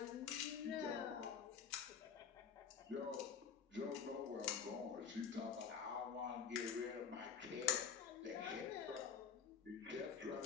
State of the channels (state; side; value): quieter; right; 7.0 dB